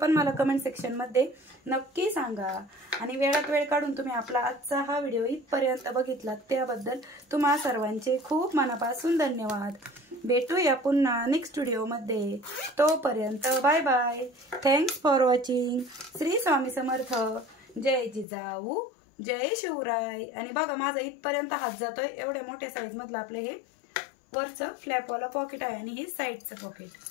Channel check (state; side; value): drops out; right; at 18.2 s